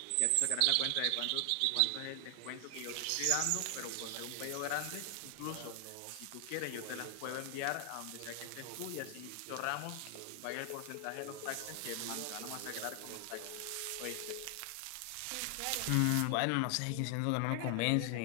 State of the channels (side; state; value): both; different; correlation 0.00